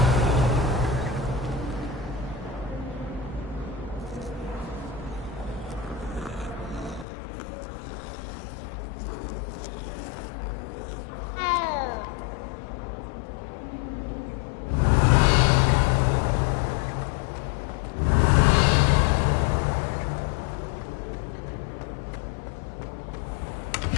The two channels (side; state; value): right; drops out; at 7.1 s